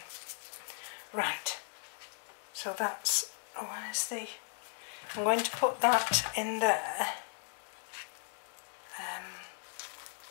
Right, so that's, oh, where's the, I'm going to put that in there.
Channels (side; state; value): right; silent; 53 dB below the other